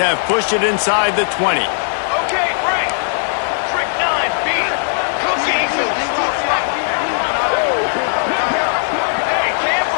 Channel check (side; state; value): right; silent; digital silence